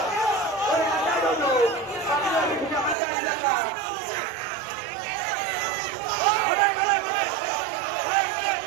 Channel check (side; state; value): left; drops out; at 3.0 s